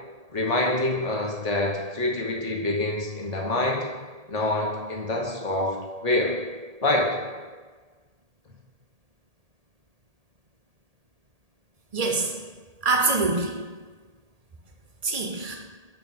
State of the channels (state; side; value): late; left; 1.8 ms